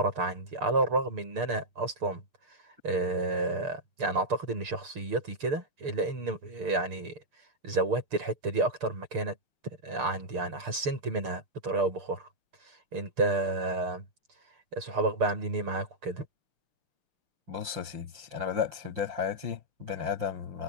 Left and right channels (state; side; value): late; left; 6.7 ms